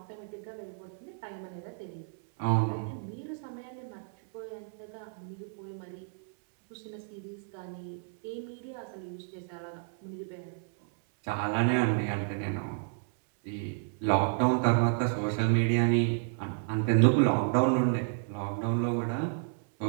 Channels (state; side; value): silent; left; 57 dB below the other